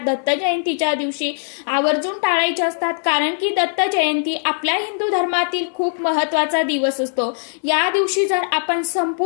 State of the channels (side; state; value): right; silent; digital silence